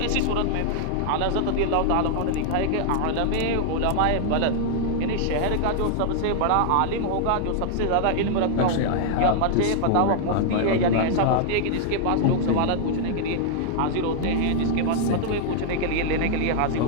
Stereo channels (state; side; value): different; both; correlation -0.01